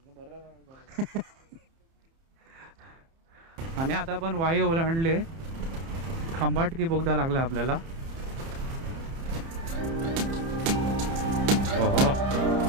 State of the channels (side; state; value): left; late; 30 ms